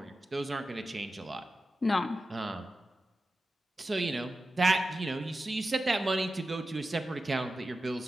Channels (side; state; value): both; normal; correlation 0.92